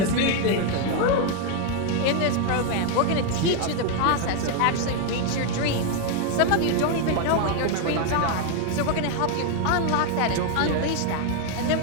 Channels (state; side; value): different; both; correlation 0.01